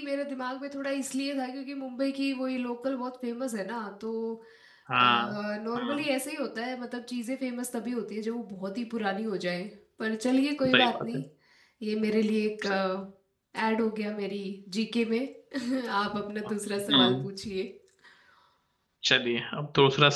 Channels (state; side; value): identical; both; correlation 1.00